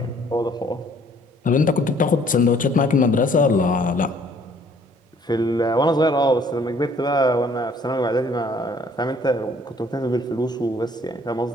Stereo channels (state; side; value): normal; both; correlation 0.59